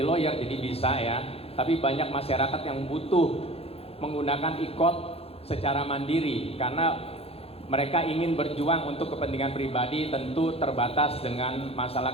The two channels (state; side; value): late; right; 0.29 ms